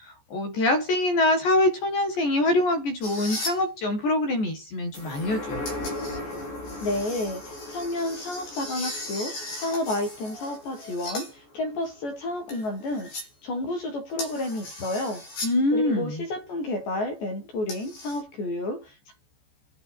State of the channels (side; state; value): right; late; 14 ms